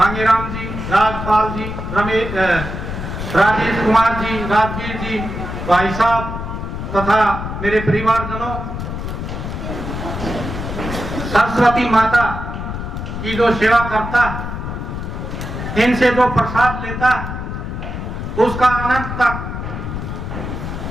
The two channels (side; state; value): left; noise; rumble, 6 dB below the sound